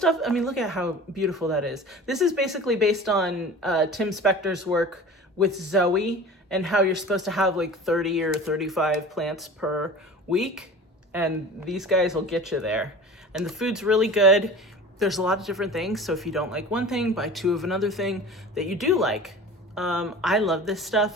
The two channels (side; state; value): both; normal; correlation 0.38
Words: I mean, look at how beautiful that is. This is basically based on Tim Spector's work with Zoe and how you're supposed to have like 30 or 35 plants per week. And these guys will get you there. And the food's really good. There's a lot of different things. So if you don't like one thing, buy 2 of another thing that you do like. I love this